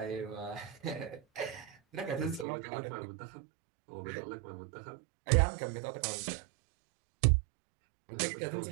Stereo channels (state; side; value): drops out; left; at 2.5 s